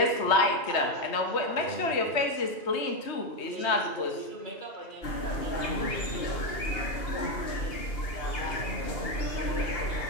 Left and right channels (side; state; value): right; late; 2.8 ms